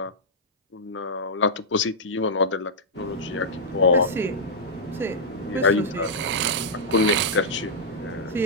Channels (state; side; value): normal; both; correlation -0.08